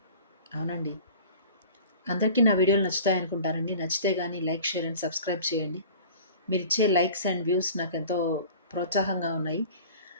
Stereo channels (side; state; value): both; inverted; correlation -0.43